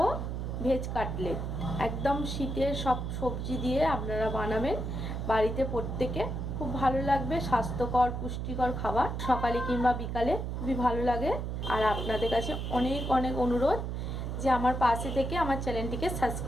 ভেজ কাটলেট। একদম শীতের সব সবজি দিয়ে আপনারা বানাবেন বাড়িতে, প্রত্যেকে খুব ভালো লাগবে। স্বাস্থ্যকর পুষ্টিকর খাবার, সকালে কিংবা বিকালে খুবই ভালো লাগে। আর আপনাদের কাছে অনেক অনেক অনুরোধ যে আমার পাশে থেকে আমার চ্যানেলটিকে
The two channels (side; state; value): right; noise; hum, 3 dB below the sound